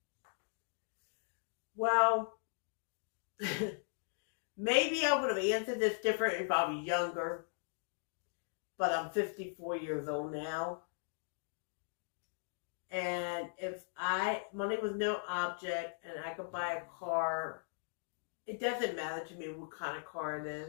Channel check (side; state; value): right; silent; digital silence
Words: Well, maybe I would have answered this different if I was younger, but I'm 54 years old now. And if money was no object and I could buy a car, it doesn't matter to me what kind of car it